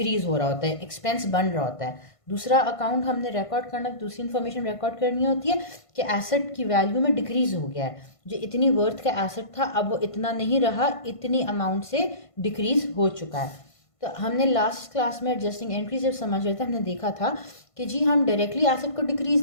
हो रहा होता है, एक्सपेंस बन रहा होता है। दूसरा अकाउंट हमने रिकॉर्ड करना, दूसरी इन्फॉर्मेशन रिकॉर्ड करनी होती है कि एसेट की वैल्यू में डिक्रीज हो गया है, जो इतनी वर्थ का एसेट था अब वो इतना नहीं रहा, इतनी अमाउंट से डिक्रीज हो चुका है। तो हमने लास्ट क्लास में एडजस्टिंग एंट्री जब समझ रहे थे हमने देखा था कि जी हम डायरेक्टली एसेट को डिक्रीज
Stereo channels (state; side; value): late; right; 1.5 ms